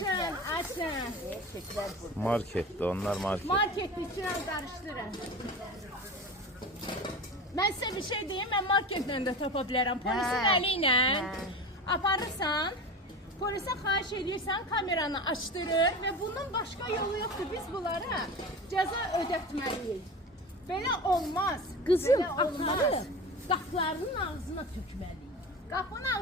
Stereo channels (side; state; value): both; normal; correlation 0.30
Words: açın. Eşekler burada. Markette, onlar market. Market içine qarışdırın. Mən sizə bir şey deyim, mən marketlə də tapa bilərəm. Polisin Hə, əli ilə hə. aparırsan, polisə xahiş edirsən, kameranı açdırır və bundan başqa yolu yoxdur. Biz bunlara cəza ödətməliyik. Belə olmaz. Kızım Belə olmaz. atarı kaplarının ağzına tökmeli. Qapının